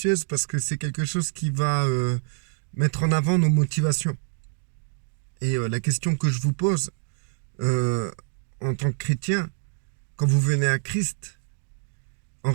parce que c'est quelque chose qui va mettre en avant nos motivations. Et la question que je vous pose en tant que chrétien, quand vous venez à Christ, en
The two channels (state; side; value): silent; left; digital silence